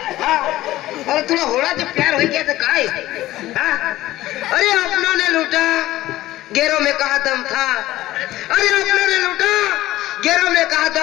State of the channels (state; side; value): quieter; right; 15.9 dB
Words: हाँ अरे थोड़ा होड़ा जो प्यार हो गया तो काय। हाँ अरे अपनों ने लूटा गैरों में कहा दम था। अरे अपनों ने लूटा गैरों में कहा